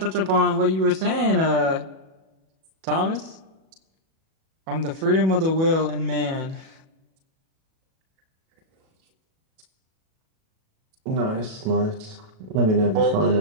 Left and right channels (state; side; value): late; left; 37 ms